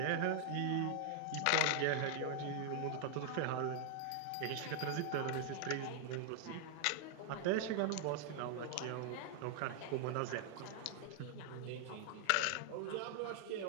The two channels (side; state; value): both; different; correlation 0.00